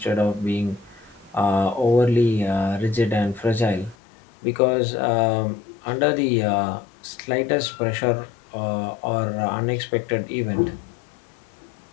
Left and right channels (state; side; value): drops out; right; at 4.0 s